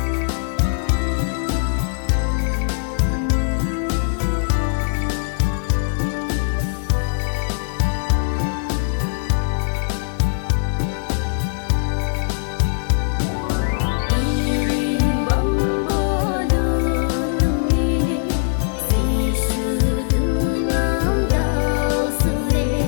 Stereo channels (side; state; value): right; silent; digital silence